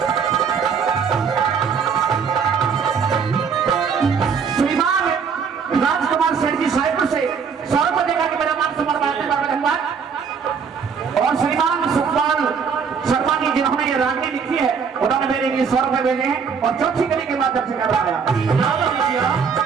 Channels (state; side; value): quieter; left; 6.2 dB